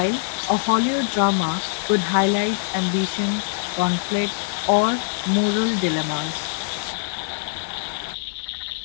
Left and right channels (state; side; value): silent; right; digital silence